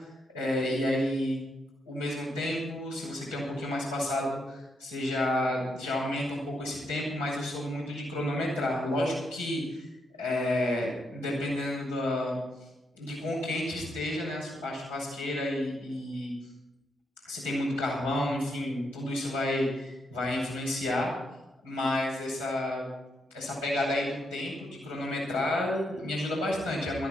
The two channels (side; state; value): both; normal; correlation 0.79